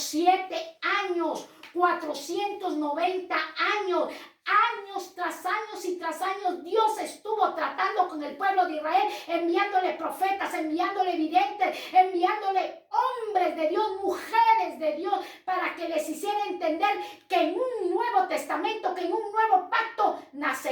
años, 490 años. Años tras años y tras años Dios estuvo tratando con el pueblo de Israel, enviándole profetas, enviándole videntes, enviándole hombres de Dios, mujeres de Dios, para que les hiciera entender que en un nuevo testamento, que en un nuevo pacto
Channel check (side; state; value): both; identical; correlation 1.00